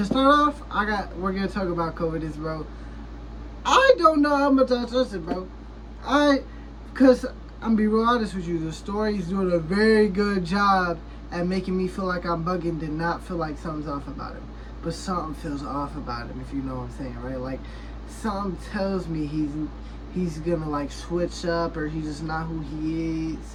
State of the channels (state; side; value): identical; both; correlation 1.00